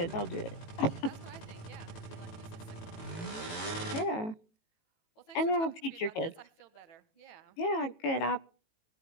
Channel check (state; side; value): late; right; 18 ms